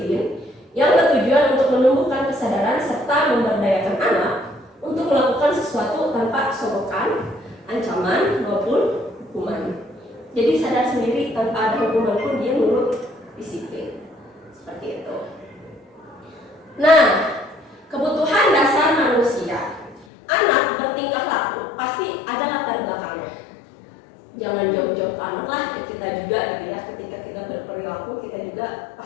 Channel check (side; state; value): right; drops out; at 20.1 s